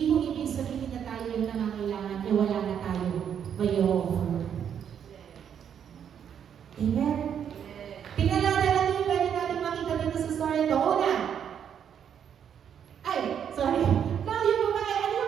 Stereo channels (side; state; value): left; quieter; 8.5 dB